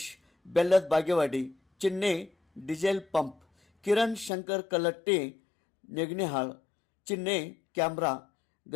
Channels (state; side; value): drops out; right; at 4.3 s